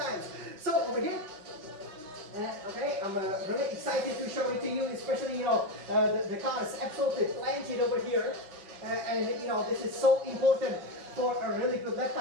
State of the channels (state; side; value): late; left; 5.5 ms